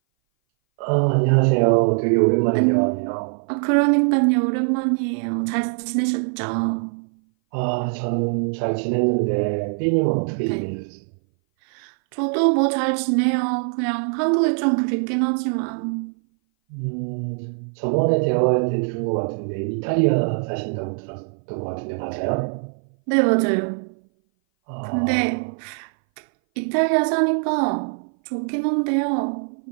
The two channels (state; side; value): silent; left; 59 dB below the other